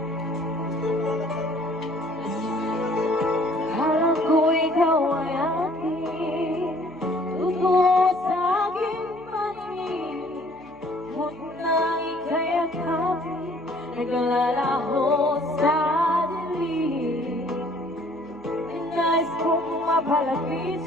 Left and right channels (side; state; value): left; noise; hum, 29 dB below the sound